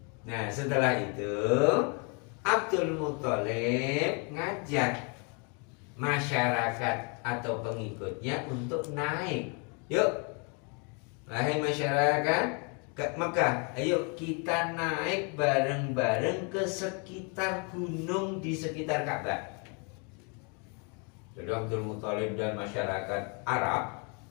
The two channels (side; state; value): right; quieter; 35.0 dB